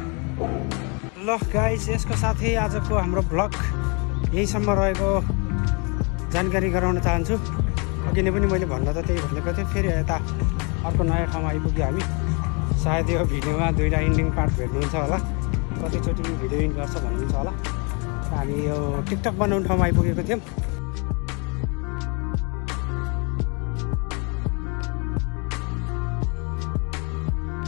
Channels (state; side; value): quieter; right; 33.4 dB